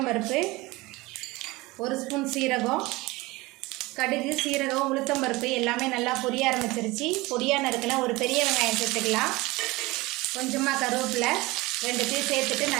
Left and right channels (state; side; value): quieter; left; 21.6 dB